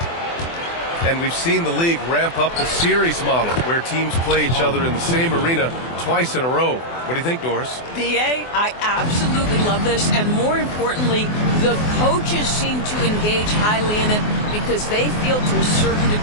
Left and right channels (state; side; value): late; right; 24 ms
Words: And we've seen the league ramp up the series model where teams play each other in the same arena twice in a row. What do you think, Doris? B.A., I absolutely love this. And more importantly, the coaches seem to engage highly in it because they feel to a certain